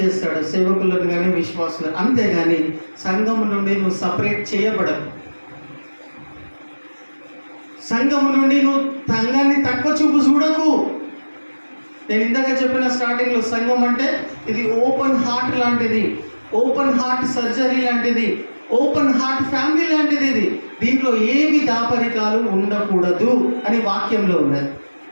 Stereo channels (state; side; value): inverted; both; correlation -1.00